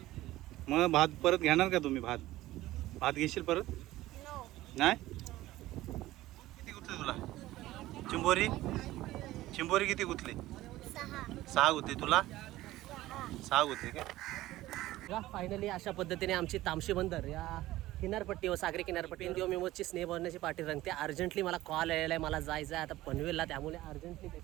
मग भात परत घेणार का तुम्ही? भात घेशील परत? नो. नाही? किती गुतले तुला चिंबोरी किती गुतले? 6 गुतले. तुला 6 गुतले काय? फायनली अशा पद्धतीने आमची तामशी बंदर या किनारपट्टी व सागरी किनारपट्टी दिवस स्नेह भरण्याची पार्टी रंगते. अर्जंटली मला कॉल आलेला आहे, मला जायचं आहे आता पनवेलला, त्यामुळे अर्जंटली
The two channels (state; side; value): quieter; left; 16.4 dB